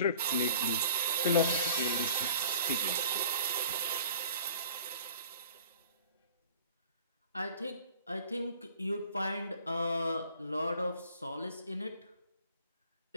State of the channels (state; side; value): inverted; both; correlation -0.48